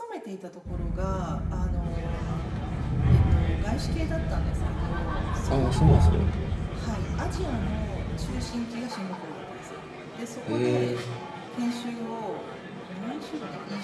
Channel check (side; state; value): both; identical; correlation 1.00